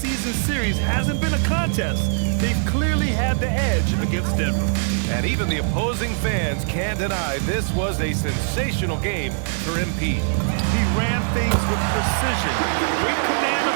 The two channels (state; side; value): silent; left; digital silence